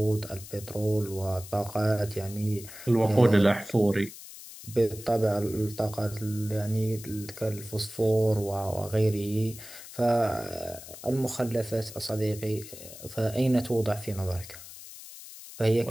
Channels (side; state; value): left; noise; hiss, 15 dB below the sound